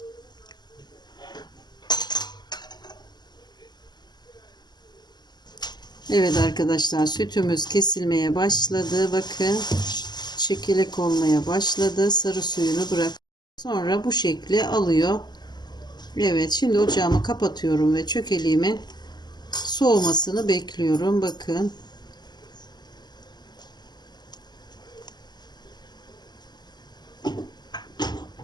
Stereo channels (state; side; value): late; right; 0.21 ms